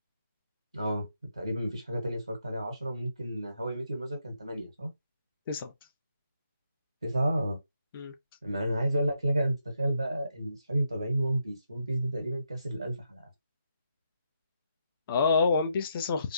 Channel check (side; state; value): both; inverted; correlation -0.80